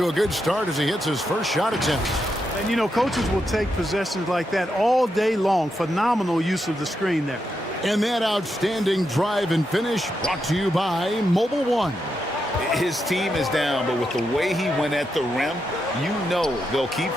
a good start as he hits his first shot attempt. And, you know, coaches will take possessions like that all day long. Phenomenal use of the screen there. And that outstanding drive and finish brought to you by Mobile One. His team is down, but with the way he went at the rim, you know they'll keep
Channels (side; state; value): both; normal; correlation 0.84